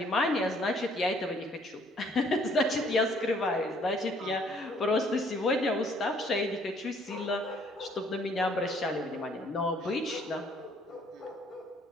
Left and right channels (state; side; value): normal; both; correlation 0.62